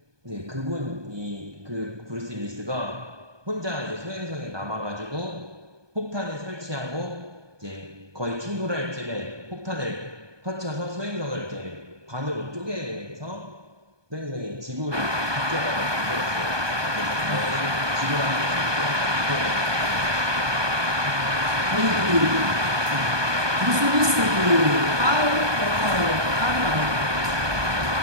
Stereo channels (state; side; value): late; left; 1.2 ms